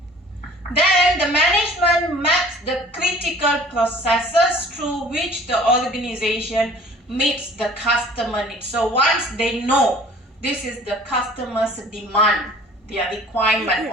Then the management maps the critical processes through which the organization meets the customer needs. So once they know this is the customer's demand, their requirement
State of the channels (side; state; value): both; normal; correlation 0.49